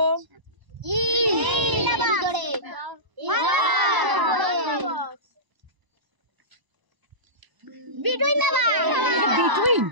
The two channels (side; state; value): left; late; 1.0 ms